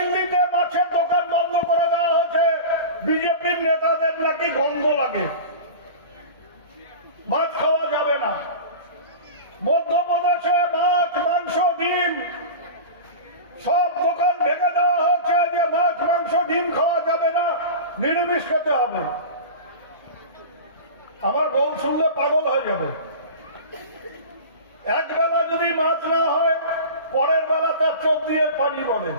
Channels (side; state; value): both; inverted; correlation -0.31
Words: মাছের দোকান বন্ধ করে দেওয়া হয়েছে, বিজেপির নেতাদের নাকি গন্ধ লাগে, মাছ খাওয়া যাবে না। মধ্যপ্রদেশে মাছ মাংস ডিম সব দোকান ভেঙে দেওয়া হয়েছে যে মাছ মাংস ডিম খাওয়া যাবে না, নিরামিষ খেতে হবে। আমার বউ শুনলে পাগল হয়ে যাবে। এক বেলা যদি মাছ না হয় পরের বেলা তার চোখ দিয়ে পানি পড়ে,